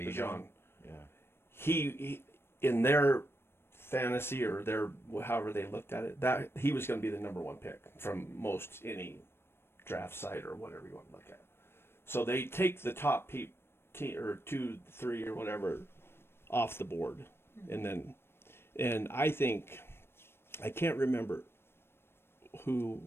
John. Yeah. He in their fantasy or their however they looked at it, that he was going to be the number one pick from most any draft site or whatever you want to look at. So they take the top or 2, 3 or whatever off the board, and I think I can't remember who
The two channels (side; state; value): right; late; 0.12 ms